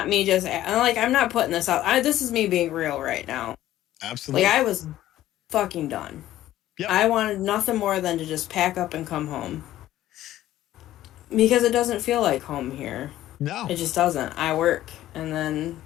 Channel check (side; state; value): right; quieter; 13.8 dB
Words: me just like I'm not putting this out. This is me being real right now. Like absolutely. I was fucking done. Yep. I wanted nothing more than to just pack up and come home. Because it doesn't feel like home here. No. It just doesn't. I work and then